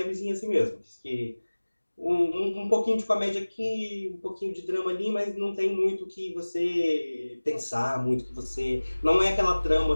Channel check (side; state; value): both; inverted; correlation -1.00